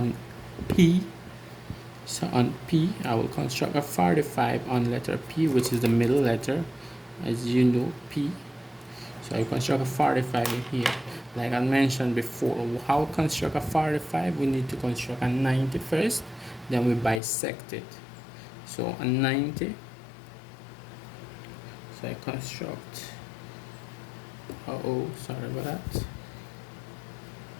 P. So on P, I will construct a 45 on letter P, which is the middle letter, as you know, P. So I construct a 45 in here. Like I mentioned before, how to construct a 45? We need to construct a 90 first, then we bisect it. So a 90. So I construct, sorry about that.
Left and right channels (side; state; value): right; drops out; at 17.2 s